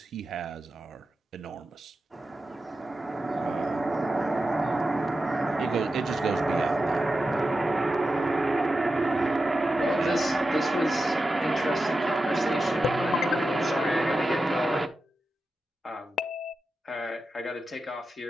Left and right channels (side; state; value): both; normal; correlation 0.91